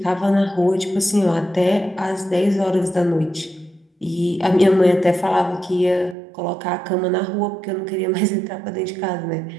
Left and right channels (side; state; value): left; drops out; at 6.2 s